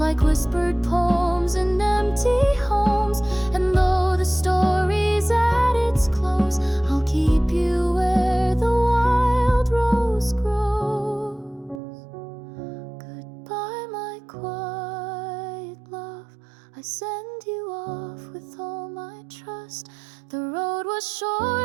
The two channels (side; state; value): left; drops out; at 11.8 s